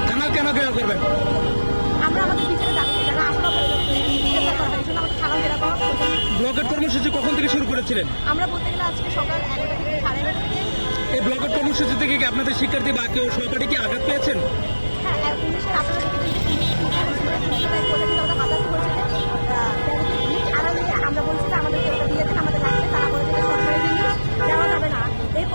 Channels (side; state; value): both; inverted; correlation -1.00